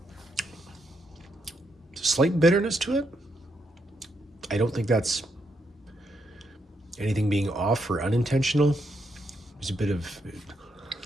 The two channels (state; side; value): normal; both; correlation 0.79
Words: Slight bitterness to it. I don't think that's anything being off or unintentional. There's a bit of,